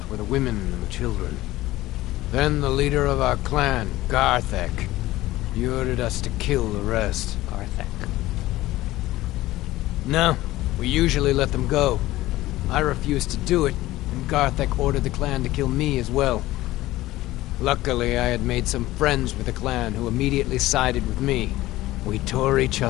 were the women and the children. Then the leader of our clan, Garthek, he ordered us to kill the rest. Garthek. No, we usually let them go. I refused to do it, and Garthek ordered the clan to kill me as well. Luckily, I had made some friends with the clan who immediately sided with me. We tore each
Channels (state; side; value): quieter; right; 16.8 dB